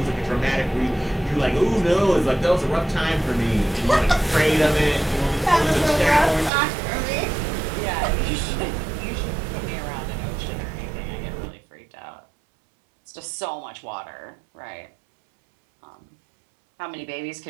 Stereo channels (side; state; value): left; drops out; at 6.5 s